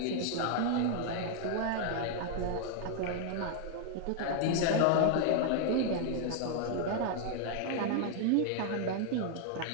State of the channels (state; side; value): different; both; correlation 0.00